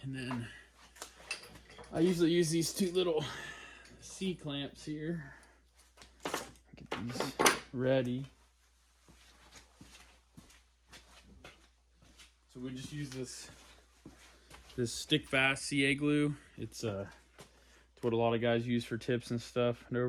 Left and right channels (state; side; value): identical; both; correlation 1.00